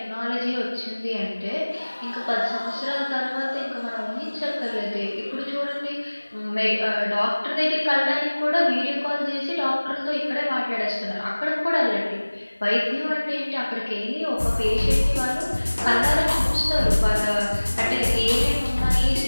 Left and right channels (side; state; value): both; inverted; correlation -1.00